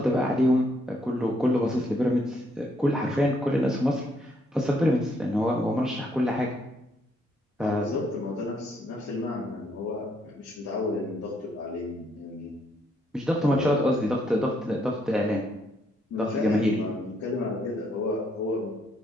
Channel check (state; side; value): normal; both; correlation 0.72